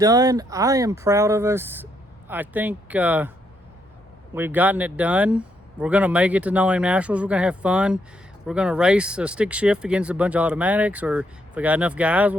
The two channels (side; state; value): both; normal; correlation 0.76